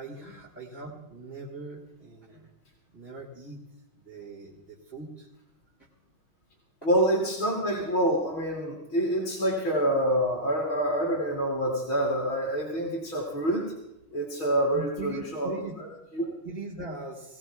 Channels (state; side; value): late; right; 6.3 ms